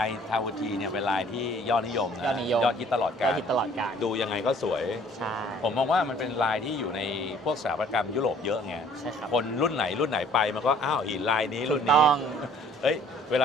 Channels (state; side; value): normal; both; correlation 0.56